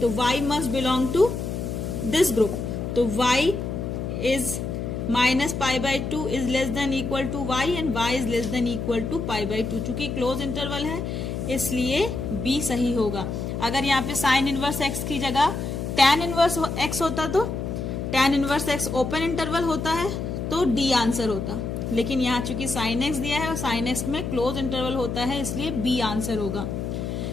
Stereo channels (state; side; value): noise; left; hum, 4 dB below the sound